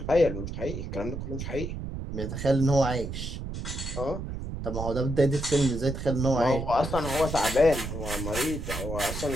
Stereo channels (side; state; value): right; noise; rumble, 6 dB below the sound